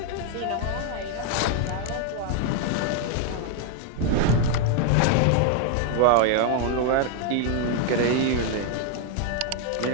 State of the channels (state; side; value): different; both; correlation 0.00